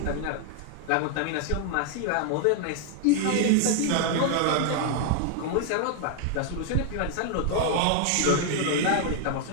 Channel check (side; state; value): both; different; correlation 0.00